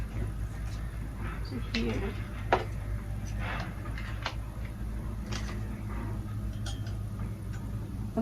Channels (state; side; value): identical; both; correlation 1.00